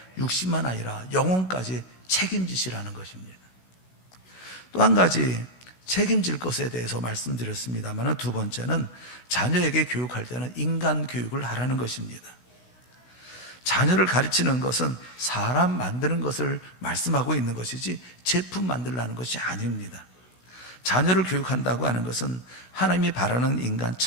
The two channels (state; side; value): late; right; 16 ms